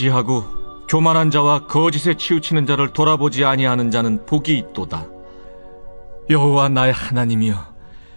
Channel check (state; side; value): inverted; both; correlation -1.00